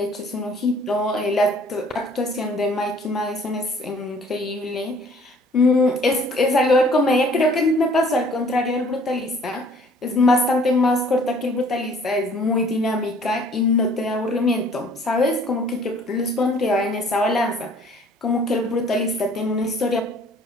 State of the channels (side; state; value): both; normal; correlation 0.56